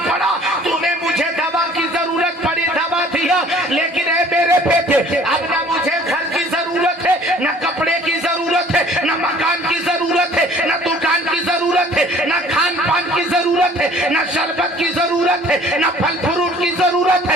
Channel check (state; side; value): normal; both; correlation 0.53